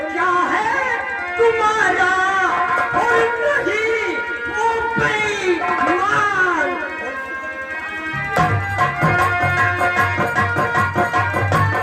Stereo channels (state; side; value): identical; both; correlation 1.00